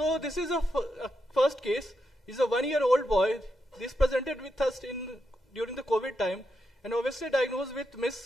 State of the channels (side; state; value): both; normal; correlation 0.84